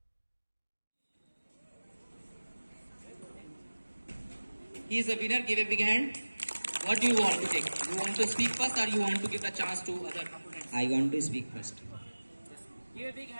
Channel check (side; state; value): both; inverted; correlation -1.00